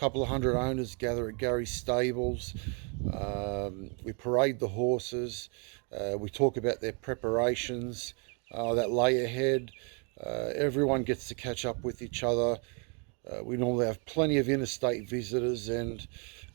of hundred owners gather at Gary's stables. We parade the horses. We talk about their preparations that lay ahead. Everyone gets to catch up with each other. We normally have plenty of interstate visitors, and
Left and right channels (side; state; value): left; quieter; 37.3 dB